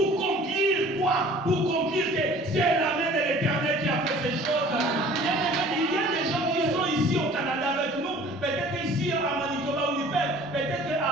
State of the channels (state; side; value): normal; both; correlation 0.49